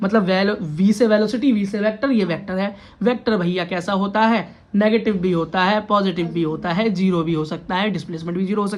मतलब वी से वेलोसिटी, वी से वेक्टर, ये वेक्टर है। वेक्टर भैया कैसा होता है? नेगेटिव भी होता है, पॉजिटिव भी होता है, जीरो भी हो सकता है, डिस्प्लेसमेंट भी जीरो हो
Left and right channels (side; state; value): both; identical; correlation 1.00